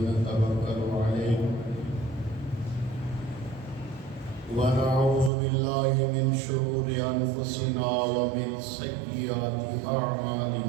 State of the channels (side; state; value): left; drops out; at 5.3 s